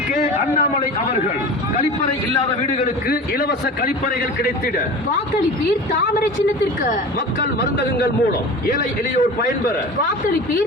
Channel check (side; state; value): both; normal; correlation 0.34